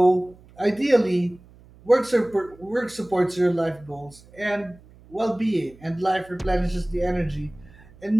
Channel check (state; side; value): noise; right; hum, 25 dB below the sound